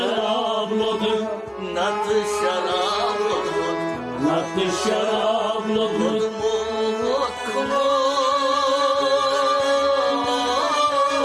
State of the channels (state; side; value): identical; both; correlation 1.00